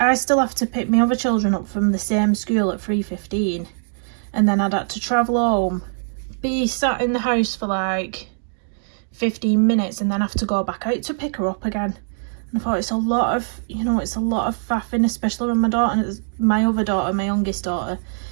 still have to pick my other children up from the same school at 3:15, and then I'd have to travel home, be sat in the house for like 15 minutes, and then have to go back out to pick her up again. And I thought it's a lot of, you know, it's a lot of faffing, especially when my other daughter, my youngest daughter,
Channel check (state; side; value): silent; left; digital silence